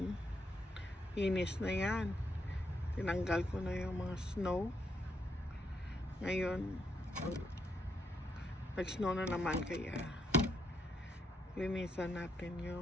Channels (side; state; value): both; normal; correlation 0.78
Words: inis na yan. Tinanggal ko na yung mga snow. Ngayon nag-snow na naman, kaya linisan natin